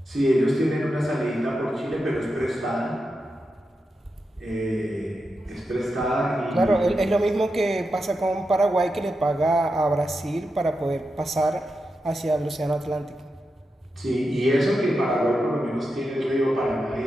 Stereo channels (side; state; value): both; normal; correlation 0.88